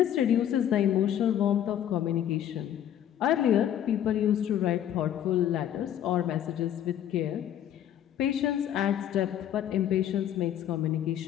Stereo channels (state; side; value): quieter; right; 10.6 dB